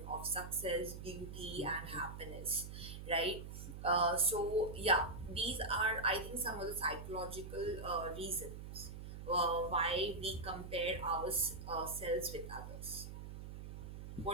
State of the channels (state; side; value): noise; right; hum, 10 dB below the sound